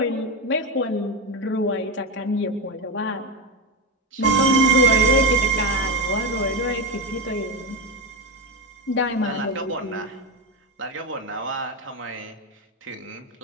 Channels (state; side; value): normal; both; correlation 0.15